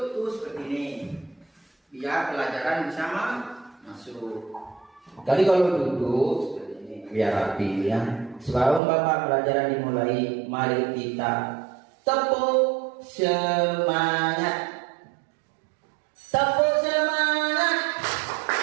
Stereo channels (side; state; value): left; drops out; at 8.8 s